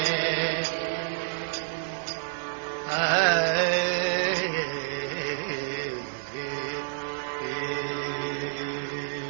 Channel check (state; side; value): silent; left; 59 dB below the other